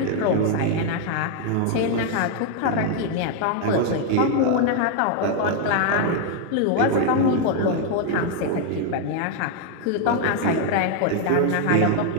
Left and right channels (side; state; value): both; different; correlation 0.00